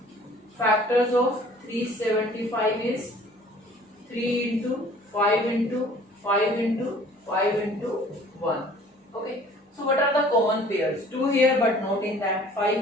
Factors of 375 is 3 into 5 into 5 into 5 into 1। Okay, so what are the common pairs? 2 here but not in that,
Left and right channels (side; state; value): both; normal; correlation 0.51